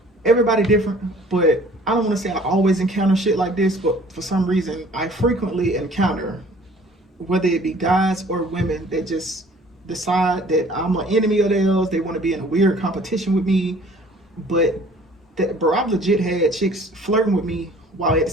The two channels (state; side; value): normal; both; correlation 0.53